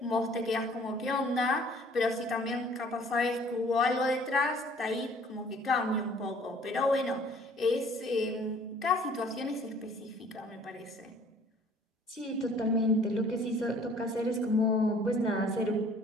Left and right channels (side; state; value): both; normal; correlation 0.55